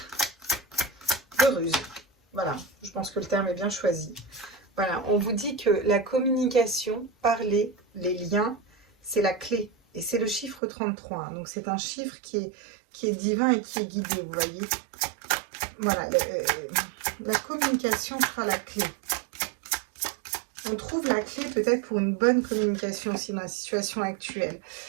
ruse. Voilà, je pense que le terme est bien choisi. Voilà, on vous dit que la communication, parler, les liens, c'est la clé. Et c'est le chiffre 33. Hein. Donc c'est un chiffre qui est divin et qui est guidé, vous voyez. Voilà, la communication sera la clé. On trouve la clé peut-être pour une bonne communication aussi dans la situation actuelle.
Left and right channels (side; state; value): left; drops out; at 10.6 s